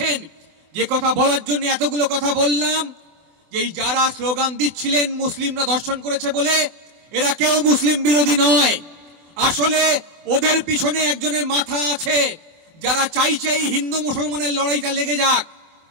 যে কথা বলার জন্য এতগুলো কথা বললাম, যে যারা স্লোগান দিচ্ছিলেন মুসলিমরা ধর্ষণ করেছে বলে, এরা কেউ মুসলিম বিরোধী নয়। আসলে ওদের পিছনে একজনের মাথা আছে যারা চাইছে হিন্দু মুসলমানের লড়াইটা লেগে যাক।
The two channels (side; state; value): left; late; 24 ms